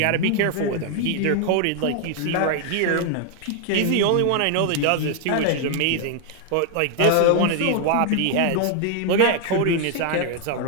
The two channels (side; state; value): both; different; correlation 0.00